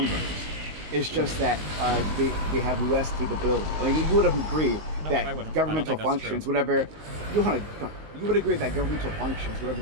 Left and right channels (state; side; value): late; left; 19 ms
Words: is just that they have less capability. Like you would agree that governmental functions, whatever you would agree that governmental functions, whatever